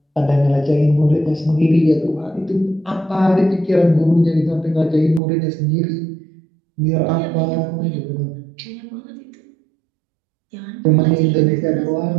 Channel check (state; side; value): drops out; left; at 5.2 s